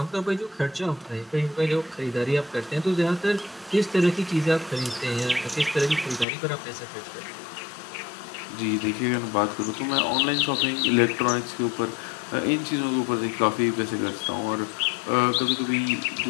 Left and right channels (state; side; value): drops out; right; at 6.2 s